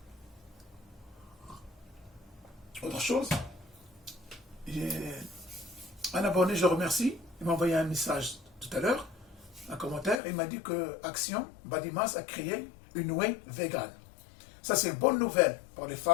Autre chose, un abonné, je le remercie, il m'a envoyé un message tout à l'heure, un commentaire, il m'a dit que Action, Badimas, a créé une whey vegan. Ça, c'est une bonne nouvelle pour les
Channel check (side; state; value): right; drops out; at 10.2 s